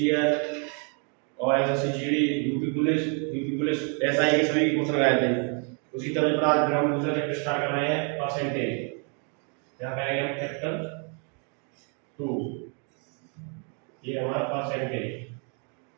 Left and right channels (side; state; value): left; quieter; 39.0 dB